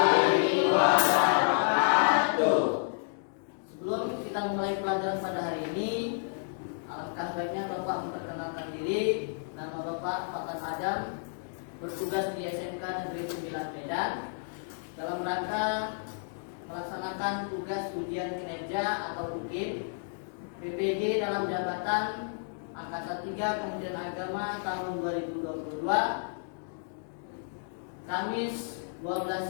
wabarakatuh. Sebelum kita memulai pelajaran pada hari ini, alangkah baiknya Bapak memperkenalkan diri. Nama Bapak Fatan Adam, bertugas di SMK Negeri 9 Medan dalam rangka melaksanakan tugas ujian kinerja atau UKIP PPG dalam jabatan Angkatan 3 Kementerian Agama tahun 2022, Kamis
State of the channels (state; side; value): silent; right; digital silence